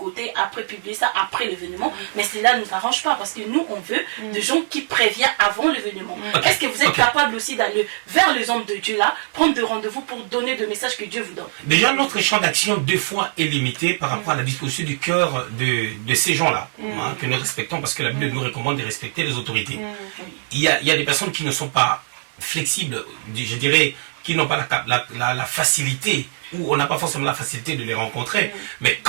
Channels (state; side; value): silent; left; digital silence